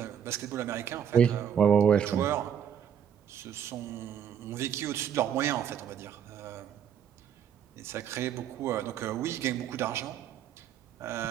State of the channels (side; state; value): left; quieter; 8.7 dB